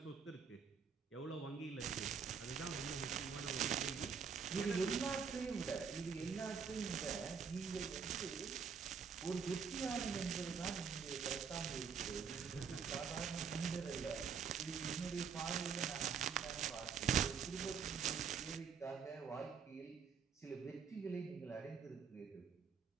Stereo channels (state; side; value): quieter; left; 6.3 dB